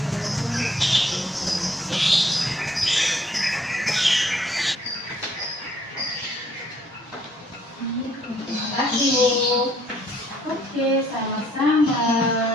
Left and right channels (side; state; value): both; normal; correlation 0.64